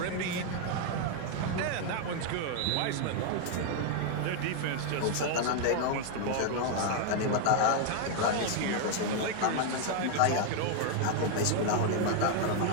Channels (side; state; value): both; different; correlation 0.00